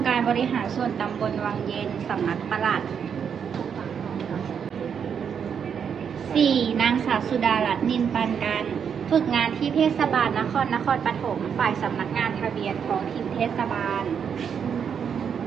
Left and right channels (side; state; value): left; quieter; 7.3 dB